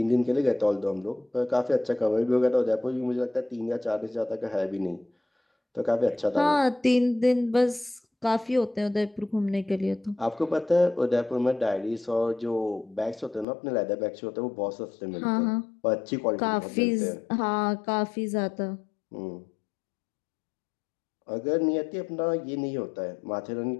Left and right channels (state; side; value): drops out; right; at 13.5 s